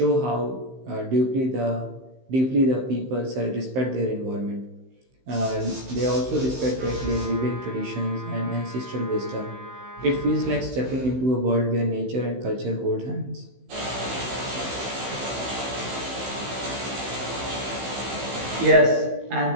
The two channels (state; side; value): late; left; 15 ms